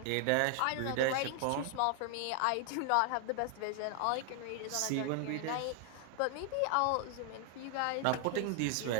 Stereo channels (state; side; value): different; both; correlation 0.00